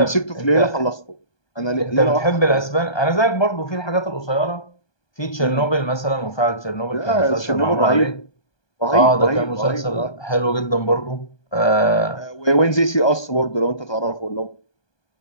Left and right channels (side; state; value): right; late; 1.2 ms